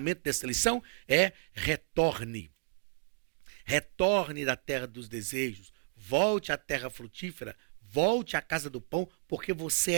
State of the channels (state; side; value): silent; left; digital silence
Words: dessa lição, é retorne. Retorne da terra dos desejos, volte à terra frutífera, volte à casa do pão, porque você